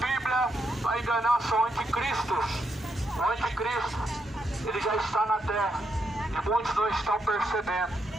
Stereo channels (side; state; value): both; normal; correlation 0.80